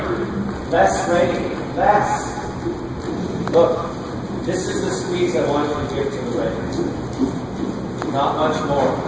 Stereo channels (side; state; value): both; identical; correlation 1.00